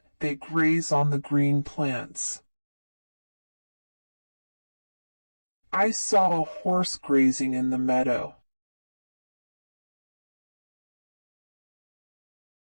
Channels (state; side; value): inverted; both; correlation -1.00